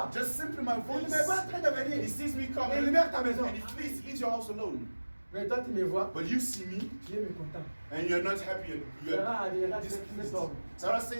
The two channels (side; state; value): both; inverted; correlation -1.00